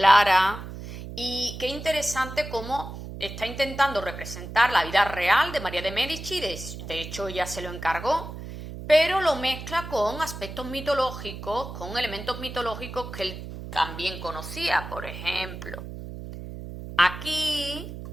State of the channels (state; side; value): noise; right; hum, 10 dB below the sound